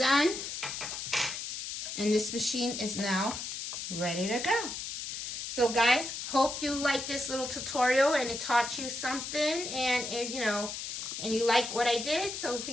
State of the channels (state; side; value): noise; left; hiss, 6 dB below the sound